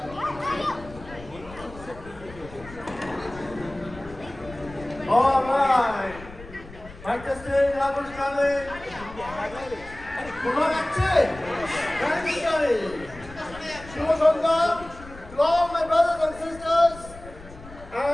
right. Mic testing, level challenge. Kumar Akche. Thank you, Charlie. Shubha Sangam. To all my brothers and sisters.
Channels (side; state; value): left; noise; rumble, 17 dB below the sound